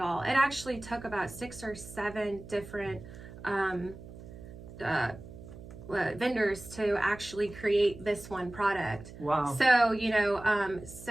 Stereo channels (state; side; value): noise; right; hum, 15 dB below the sound